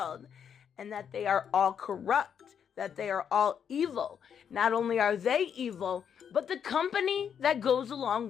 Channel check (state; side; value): quieter; right; 7.9 dB